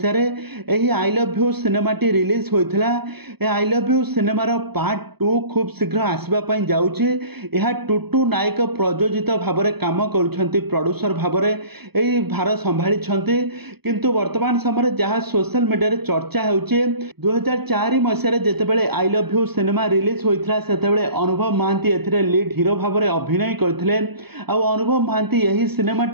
एही आई लव यू सिनेमाटी रिलीज होइथिला। ए आई लव यू सिनेमार पार्ट 2 खूब शीघ्र आसबापई जाउछि। यह टुटू नायक प्रयोजित भाव में काम करुछंती, प्रोड्यूसर भाव में एही भार संभाली छंती। किंतु वर्तमान समय जहाँ सोशल मीडिया चर्चा होउछि 2004 मसीह जेतेबेले I love you cinema release होइथिला सेतेबेले अनुभव महांती एथिरे लीड हीरो भाव में अभिनय करथिले। आ अनुभव महांती यही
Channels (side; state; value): left; late; 0.97 ms